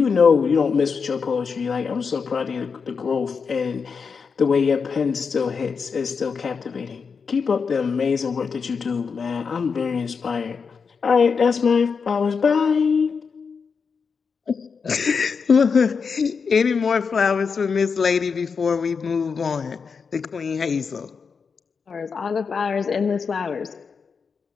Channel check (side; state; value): right; quieter; 5.6 dB